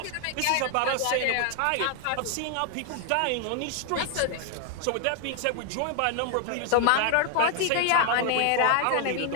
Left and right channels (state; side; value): different; both; correlation 0.00